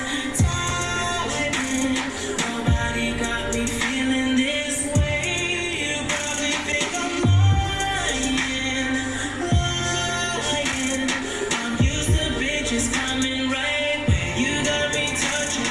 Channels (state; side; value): identical; both; correlation 1.00